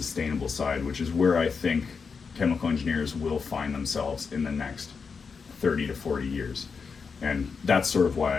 side, which is where I think chemical engineers will find themselves in the next 30 to 40 years. And that's sort of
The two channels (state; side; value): quieter; right; 5.4 dB